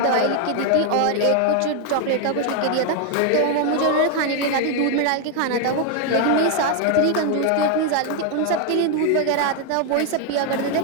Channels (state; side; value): different; both; correlation 0.01